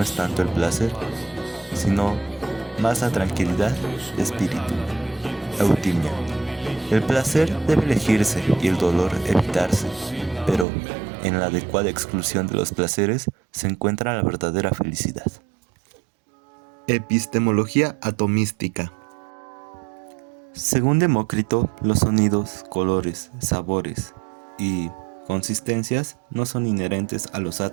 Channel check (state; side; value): drops out; left; at 10.7 s